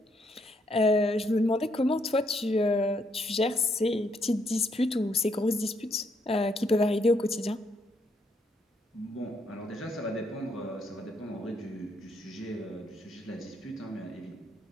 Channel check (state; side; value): normal; both; correlation 0.74